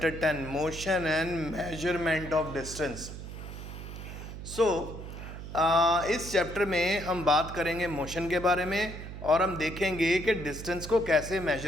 10 motion and measurement of distance. इस चैप्टर में हम बात करेंगे मोशन के बारे में और हम देखेंगे कि डिस्टेंस को कैसे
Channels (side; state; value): right; noise; hum, 10 dB below the sound